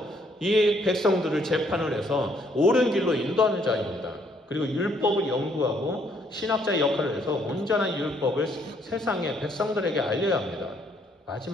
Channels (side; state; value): both; normal; correlation 0.68